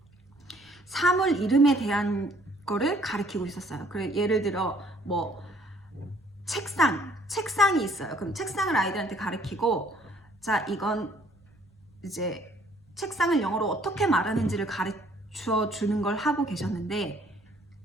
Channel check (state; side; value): normal; both; correlation 0.61